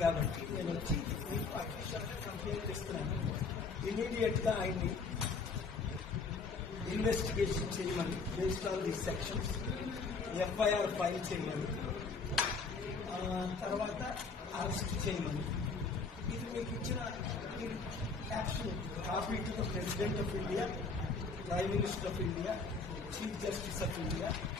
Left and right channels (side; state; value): right; quieter; 4.5 dB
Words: కాబట్టి నేను వచ్చి మీకు అఫీషియల్గా కంప్లైంట్ ఇస్తున్నాను. ఇమీడియట్గా ఆయన్ని ఇన్వెస్టిగేషన్ చేయమని, based on the sections FIR file చేయమని, తర్వాత అరెస్ట్ చేయమని. ఇది మీకు ఇచ్చిన caption copy to the president of India, prime minister of India, chief justice of India,